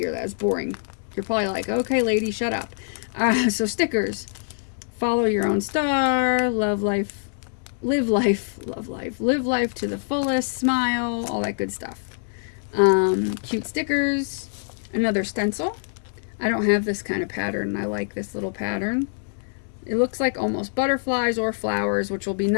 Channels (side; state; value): right; silent; digital silence